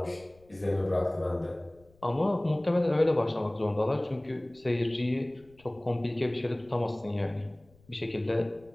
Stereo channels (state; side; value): noise; left; rumble, 29 dB below the sound